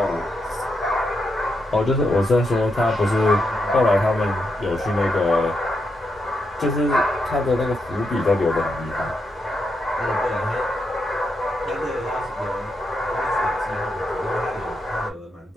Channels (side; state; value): both; normal; correlation 0.83